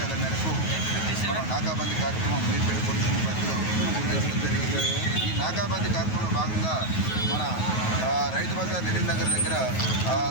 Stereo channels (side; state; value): right; late; 9.3 ms